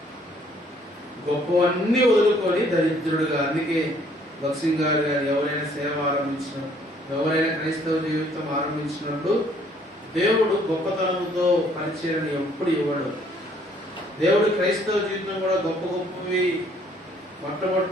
గొప్పవన్నీ వదులుకొని దరిద్రుడుగా. అందుకే భక్సింగ్ గారు ఎవరైనా సేవ ఆరంభించినప్పుడు, ఎవరైనా క్రైస్తవ జీవితం ఆరంభించినప్పుడు దేవుడు గొప్పతనంతో పరిచయం ఎప్పుడు ఇవ్వడు. దేవుడు క్రైస్తవ జీవితం కూడా గొప్ప గొప్పవి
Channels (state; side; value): normal; both; correlation 0.62